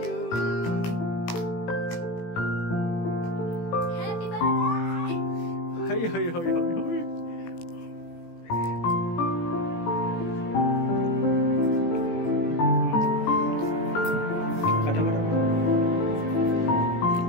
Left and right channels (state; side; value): late; right; 18 ms